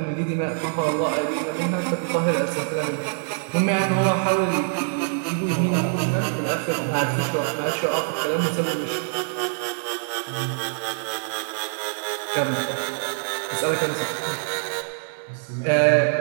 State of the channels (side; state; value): left; silent; digital silence